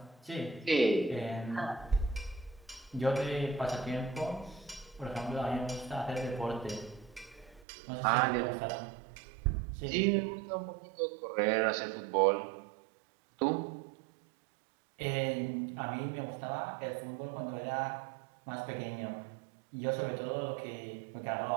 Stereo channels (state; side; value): drops out; left; at 7.7 s